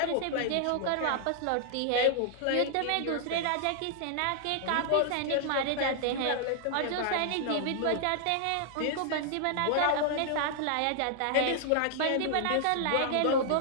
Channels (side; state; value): both; different; correlation -0.01